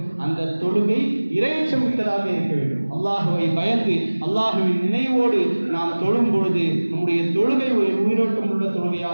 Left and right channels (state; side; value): inverted; both; correlation -1.00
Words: அந்த தொழுகை இறையச்சம் மிக்கதாக இருக்க வேண்டும். அல்லாஹுவை பயந்து அல்லாஹுவின் நினைவோடு நாம் தொழும் பொழுது நம்முடைய தொழுகை ஒரு உயிரோட்டம் உள்ள